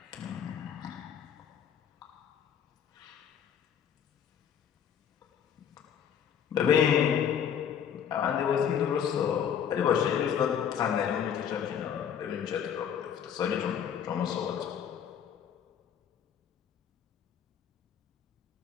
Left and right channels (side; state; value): right; quieter; 8.5 dB